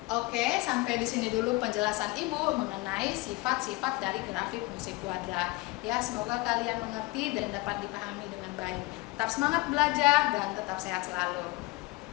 Oke, sampai di sini dulu penjelasan Ibu mengenai sifat-sifat dari grafik fungsi kuadrat, ya. Semoga kalian mengerti dan dapat dipahami dengan baik. Tetap semangat belajar dan tetap sehat selalu.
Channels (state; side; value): quieter; right; 22.9 dB